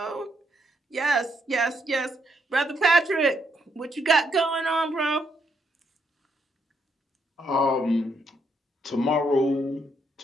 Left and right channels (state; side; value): normal; both; correlation 0.75